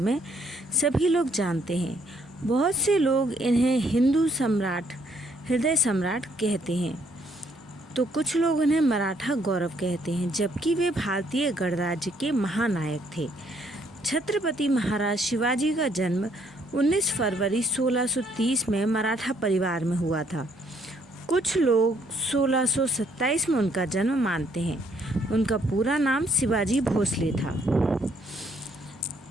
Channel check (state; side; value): normal; both; correlation 0.68